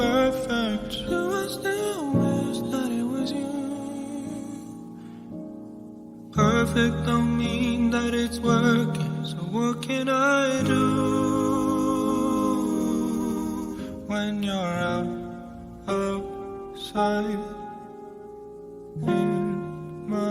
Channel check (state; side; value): identical; both; correlation 1.00